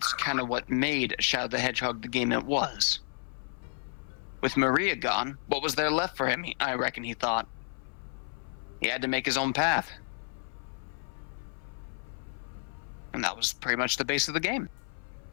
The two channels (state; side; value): silent; right; 57 dB below the other